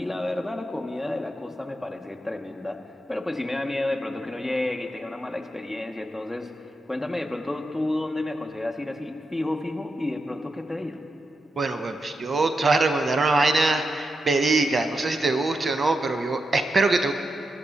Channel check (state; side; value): normal; both; correlation 0.87